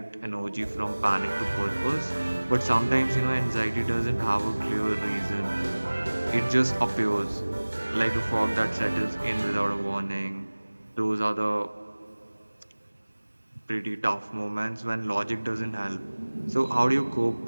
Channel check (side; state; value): both; inverted; correlation -1.00